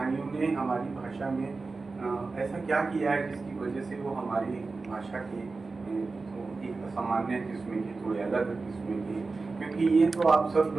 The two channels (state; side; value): quieter; left; 3.9 dB